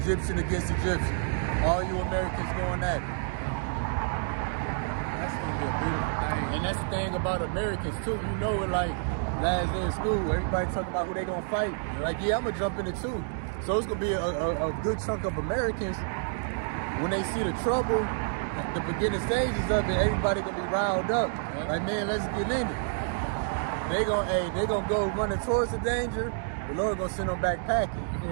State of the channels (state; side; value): silent; left; digital silence